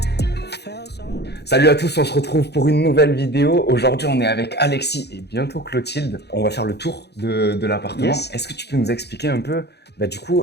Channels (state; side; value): late; right; 0.48 ms